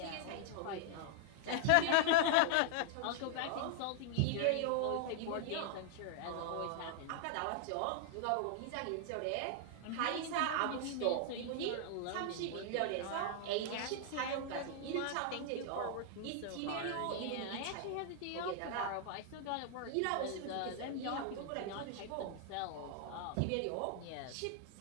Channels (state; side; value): different; both; correlation -0.01